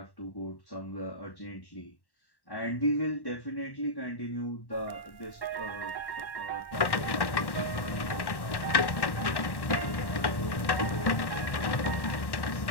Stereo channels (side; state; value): right; late; 1.1 ms